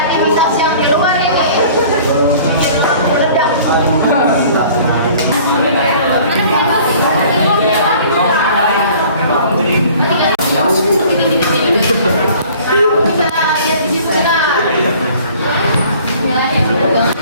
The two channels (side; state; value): both; inverted; correlation -0.50